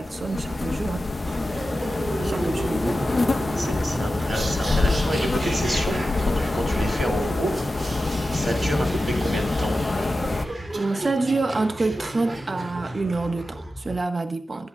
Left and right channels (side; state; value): both; normal; correlation 0.92